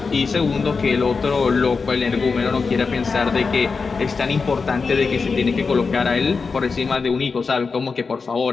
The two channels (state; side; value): quieter; right; 4.8 dB